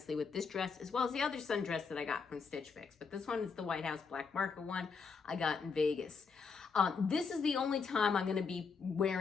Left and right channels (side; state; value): right; quieter; 5.3 dB